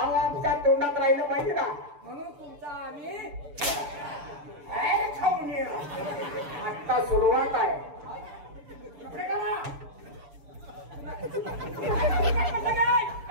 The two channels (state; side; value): late; left; 6.9 ms